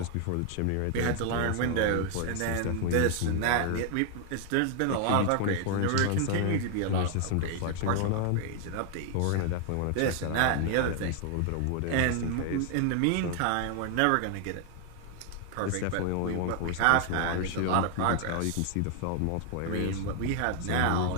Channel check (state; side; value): different; both; correlation 0.00